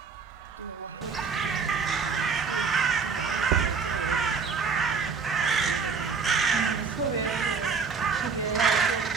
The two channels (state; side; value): quieter; left; 5.3 dB